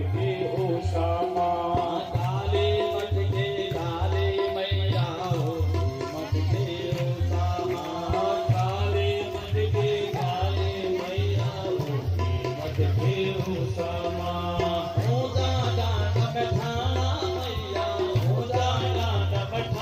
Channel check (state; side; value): identical; both; correlation 1.00